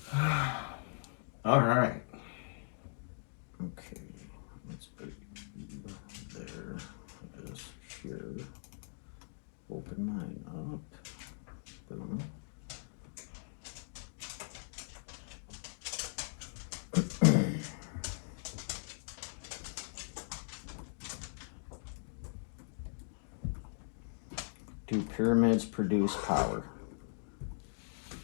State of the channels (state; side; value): silent; right; digital silence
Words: All right. Okay, let's put there. Just here. Open mine up. Boom. Do pyramids produce power?